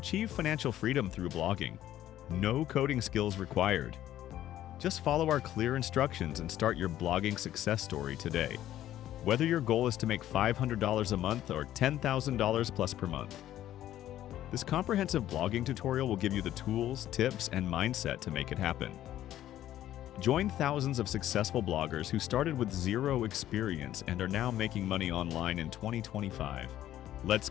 financial freedom through blogging. No coding skills required. Just follow our clear instructions and start your blogging success story today. Whether your goal is to make $500 a month or $10,000 plus per month. This comprehensive blogging tutorial will give you the tools, tips, and mindset to make it happen. Join thousands of successful bloggers who started with zero experience and are now making money online in 2025. Let's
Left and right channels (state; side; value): quieter; right; 12.7 dB